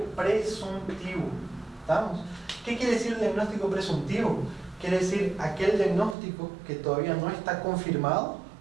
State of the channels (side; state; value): left; drops out; at 6.2 s